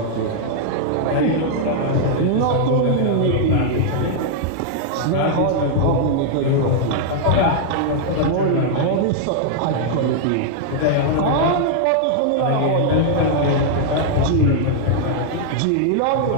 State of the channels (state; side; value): different; both; correlation -0.01